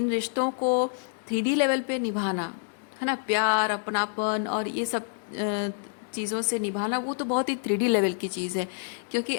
रिश्तों को 3D लेवल पे निभाना है ना, प्यार अपनापन और ये सब चीज़ों से निभाना, वो तो बहुत ही 3D लेवल की चीज़ है, क्योंकि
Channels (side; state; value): right; silent; digital silence